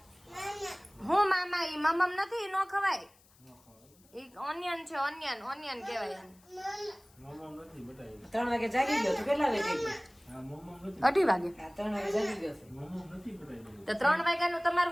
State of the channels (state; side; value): noise; left; hiss, 29 dB below the sound